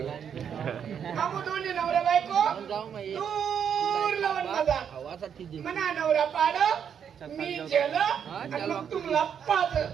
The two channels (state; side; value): quieter; left; 8.0 dB